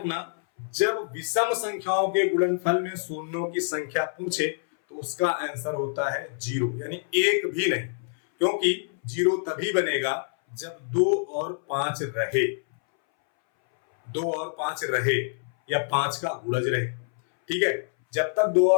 जब विषम संख्याओं के गुणनफल में शून्यों की संख्या पूछे तो उसका आंसर होता है 0, यानी एक भी नहीं, क्योंकि 0 तभी बनेगा जब 2 और 5 रहे, 2 और 5 रहे या 5 का गुणज रहे। ठीक है, जब तक 2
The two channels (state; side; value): silent; right; 61 dB below the other